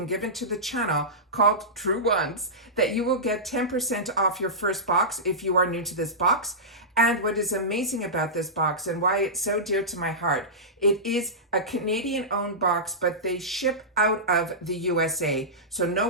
given to the channel called Truewants that you will get 10% off your first box if you are new to this box. And what is amazing about this box and why it's so dear to my heart, it is a Canadian-owned box, but they ship out of the USA. So no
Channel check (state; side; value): normal; both; correlation -0.15